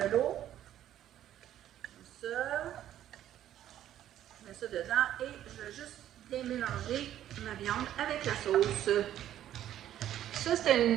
l'eau. Comme ça. Je mets ça dedans et je vais juste bien mélanger ma viande avec la sauce. Ça, c'était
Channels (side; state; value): left; quieter; 11.8 dB